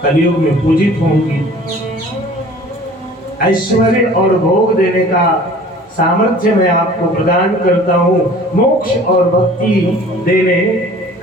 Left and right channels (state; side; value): normal; both; correlation 0.47